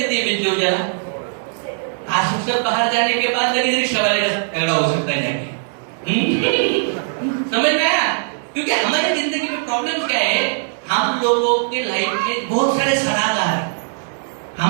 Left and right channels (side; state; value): left; silent; 64 dB below the other